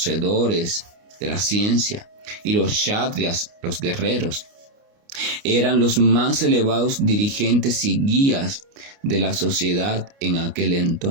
de la ciencia, y los kshatriyas, los guerreros, eran los más elevados dirigentes y guías de la sociedad en aquel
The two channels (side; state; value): left; late; 29 ms